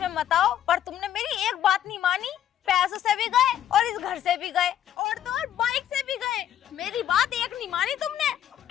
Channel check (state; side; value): quieter; right; 10.6 dB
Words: मत आओ, पर तुमने मेरी एक बात नहीं मानी। पैसों से भी गए और इस घर से भी गए और तो और बाइक से भी गए, मेरी बात एक नहीं मानी तुमने।